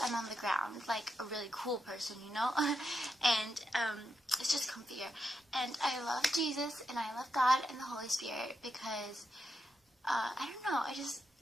I'm on the ground, like a really cool person, you know, and it's just comfier. And I love Jesus and I love God and the Holy Spirit because, I don't know, I just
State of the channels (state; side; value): normal; both; correlation 0.85